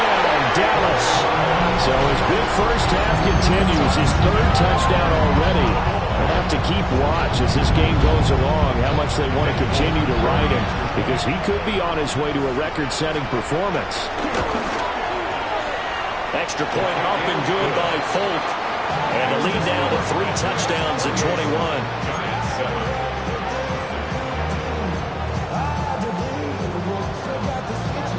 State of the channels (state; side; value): identical; both; correlation 1.00